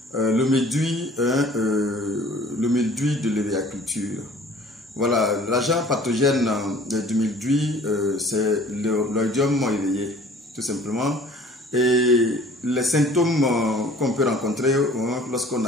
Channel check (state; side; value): normal; both; correlation 0.50